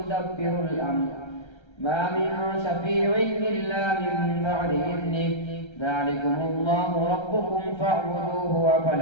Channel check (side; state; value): right; late; 1.3 ms